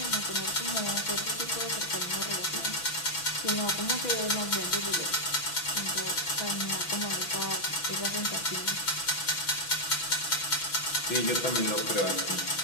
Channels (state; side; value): late; right; 6.1 ms